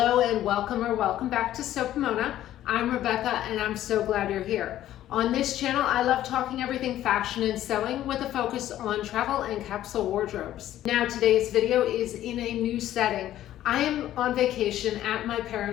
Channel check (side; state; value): right; quieter; 12.9 dB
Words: and welcome back to Sew Pomona. I'm Rebecca and I'm so glad you're here. On this channel I love talking everything fashion and sewing with a focus on travel and capsule wardrobes. Now today's video is in a new setting. I am on vacation at my